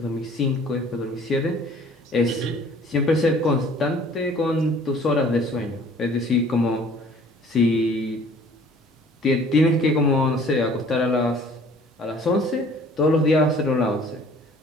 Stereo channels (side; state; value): both; normal; correlation 0.53